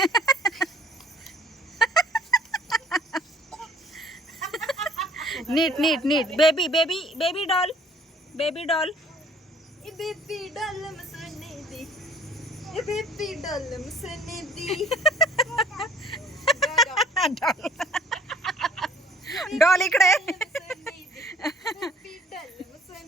नीट नीट नीट. Baby baby baby doll. Baby doll. ए बेबी डालम सोने दी. ए बेबी डालम सोने दी. डॉल इकडे. बेबी डालम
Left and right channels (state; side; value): normal; both; correlation 0.54